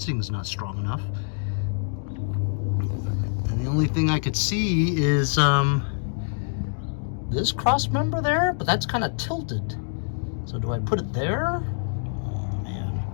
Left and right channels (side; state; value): right; silent; digital silence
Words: not strong enough. And the only thing I could see is this cross member there, but that's kind of tilted. So do I put it there? Oh man,